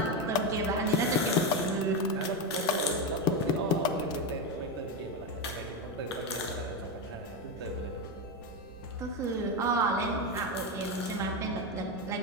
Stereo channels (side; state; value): right; noise; rumble, 22 dB below the sound